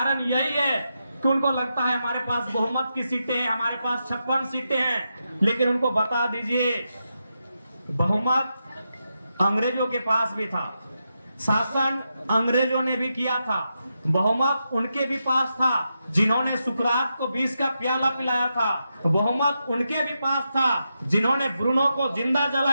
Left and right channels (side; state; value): both; inverted; correlation -0.86